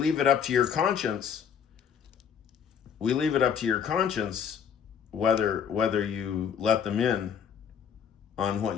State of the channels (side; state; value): right; quieter; 7.7 dB